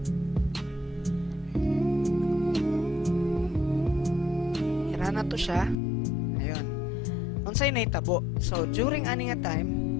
ira na to siya. Ayun, unsay nahitabo. So during ani nga time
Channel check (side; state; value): right; drops out; at 5.8 s